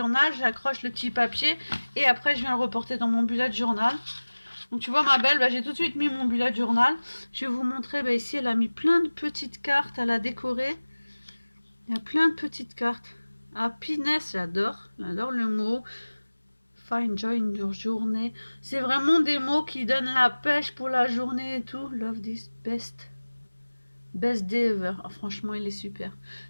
J'accroche le petit papier et après, je viens le reporter dans mon bullet journal. Donc tu vois ma belle, j'ai tout de suite mis mon bullet journal. Je vais vous montrer, ici elle a mis plein de petites cartes, elle a décoré. Il y a plein de petites cartes. Happiness, j'adore le mot. Find joy in your journée. C'est vraiment des mots qui donnent la pêche pour la journée et tout. Love this best. Best day ever. Oh, franchement, il est super.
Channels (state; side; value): inverted; both; correlation -1.00